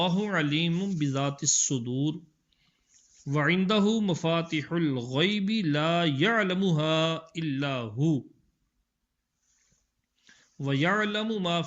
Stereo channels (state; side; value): identical; both; correlation 1.00